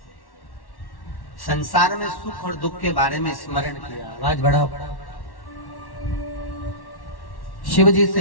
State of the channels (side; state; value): right; late; 1.1 ms